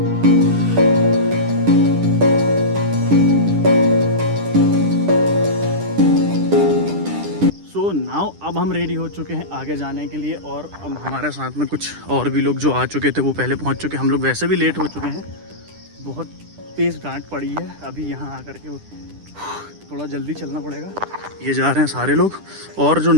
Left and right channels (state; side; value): late; left; 10 ms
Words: सो नाउ अब हम रेडी हो चुके हैं आगे जाने के लिए। और अब हमारे साथ में कुछ और भी लोग जो आ चुके थे वो पहले पहुंच चुके हैं। हम लोग वैसे भी लेट हो चुके हैं, बहुत तेज़ डांट पड़ी है। अभी यहाँ आकर के थोड़ा जल्दी चलना पड़ेगा। ये जा रहे हैं सारे लोग, और जो